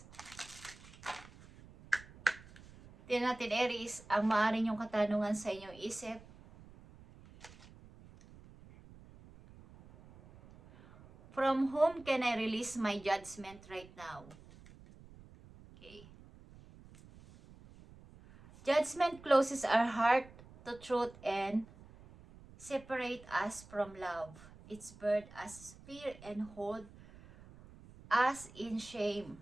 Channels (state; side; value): noise; right; rumble, 21 dB below the sound